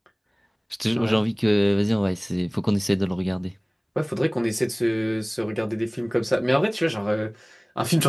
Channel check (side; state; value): both; identical; correlation 1.00